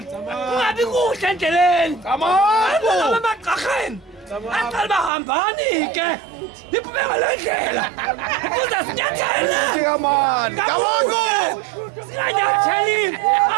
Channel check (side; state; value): left; drops out; at 5.1 s